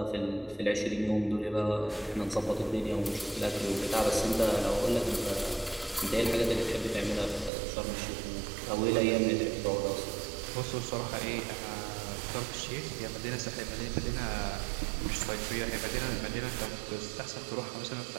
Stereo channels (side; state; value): left; drops out; at 7.5 s